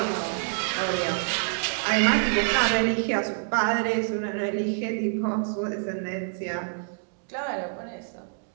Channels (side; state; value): left; silent; digital silence